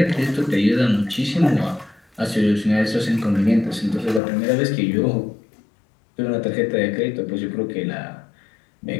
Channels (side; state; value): right; drops out; at 4.2 s